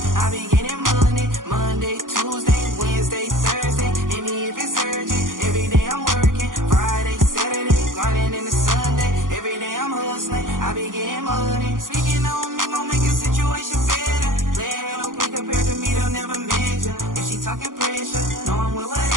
I be getting money. Monday, Tuesday, Wednesday, Thursday. Hit me if it's urgent. Every day I'm working. Friday, Saturday, running into Sunday. Every day I'm hustling. I be getting money. Speaking on me, gon' make a situation better. Playing no quick compared to me, they'll never measure. If she talking pressure, know I'm with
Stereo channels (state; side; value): late; left; 0.89 ms